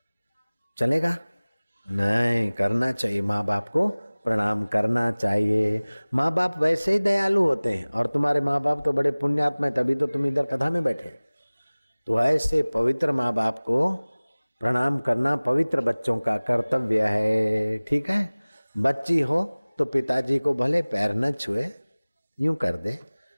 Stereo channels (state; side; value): inverted; both; correlation -1.00